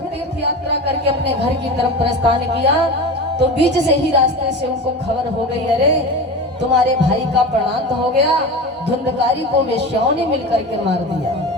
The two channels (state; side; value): normal; both; correlation 0.28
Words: यात्रा करके अपने घर की तरफ प्रस्थान किया। तो बीच से ही रास्ते से उनको खबर हो गई, अरे तुम्हारे भाई का प्राणांत हो गया, धुंधकारी को वेश्याओं ने मिलकर के मार दिया।